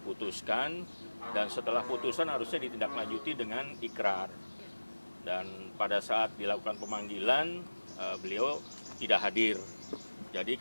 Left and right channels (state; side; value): inverted; both; correlation -1.00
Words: dan setelah putusan harusnya ditindaklanjuti dengan ikrar. Dan pada saat dilakukan pemanggilan, beliau tidak hadir. Jadi